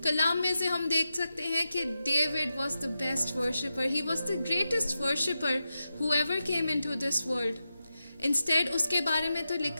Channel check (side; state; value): both; inverted; correlation -0.90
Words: कलाम में से हम देख सकते हैं कि David was the best worshipper. He was the greatest worshipper who ever came into this world. Instead, उसके बारे में तो